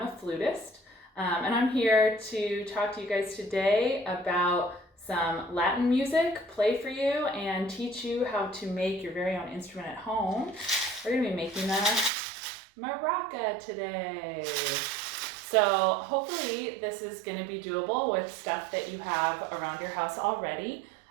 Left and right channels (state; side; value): drops out; left; at 12.1 s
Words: a flutist. And I'm here to talk to you guys today about some Latin music, play for you, and teach you how to make your very own instrument at home. We're going to be making a maraca today. So hopefully this is going to be doable with stuff that you have around your house already.